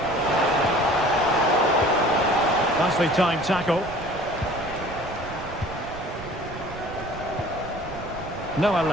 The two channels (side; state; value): right; noise; rumble, 14 dB below the sound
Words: Nicely timed tackle. Noah